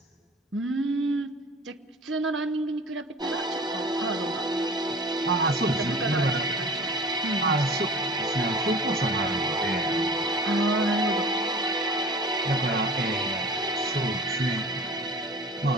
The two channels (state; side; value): normal; both; correlation 0.41